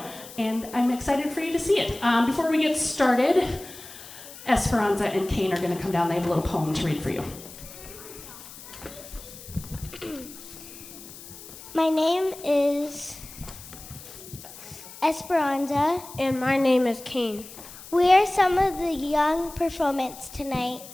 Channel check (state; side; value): noise; left; hiss, 16 dB below the sound